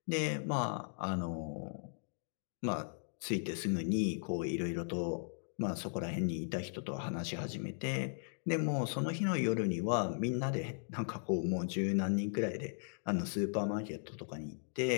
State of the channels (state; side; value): silent; right; digital silence